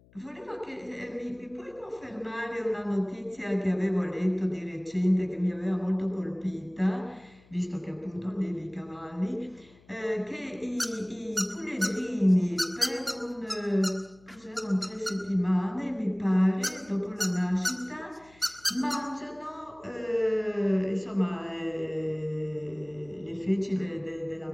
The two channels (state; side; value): noise; left; hum, 27 dB below the sound